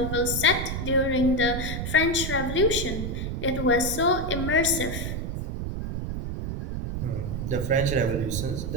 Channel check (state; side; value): noise; right; rumble, 4 dB below the sound